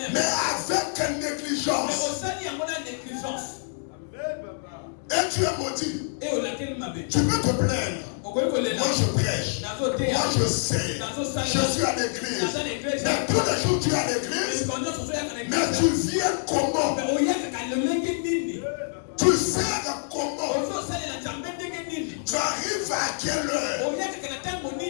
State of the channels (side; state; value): right; silent; digital silence